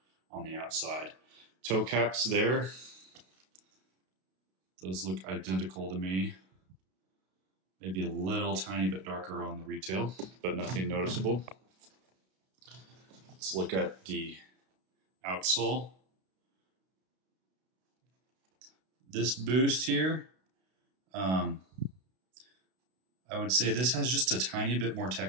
on the outside. Toe caps there, those look identical to me. Maybe a little tiny bit darker on the retail, but nothing noticeable. Let's look at the outsole. This boost here, I would say this has just a tiny bit more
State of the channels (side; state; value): left; late; 32 ms